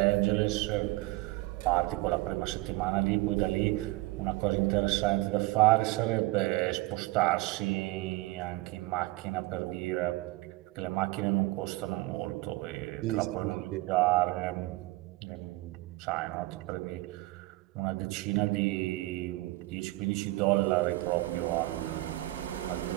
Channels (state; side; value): quieter; left; 20.3 dB